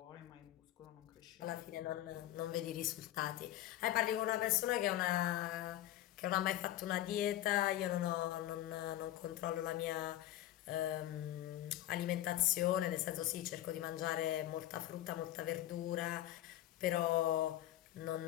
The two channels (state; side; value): quieter; right; 13.9 dB